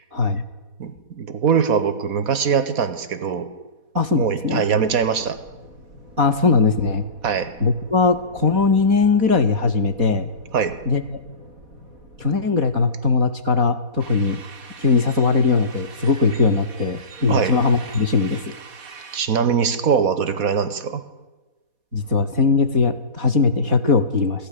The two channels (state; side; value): late; left; 4.1 ms